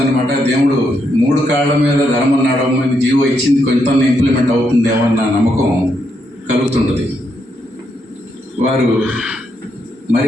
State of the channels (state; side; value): normal; both; correlation 0.79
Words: దేవుడు 3 కాళ్ళ మీద ధర్మం నడవమని జీవో ఇచ్చింది, కొంత ఇంప్లిమెంట్ అవుతుందేమో అన్న నమ్మకం కలుగుతుంటుంది. వారు